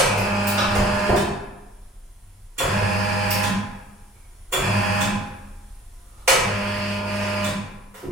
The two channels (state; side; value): normal; both; correlation 0.49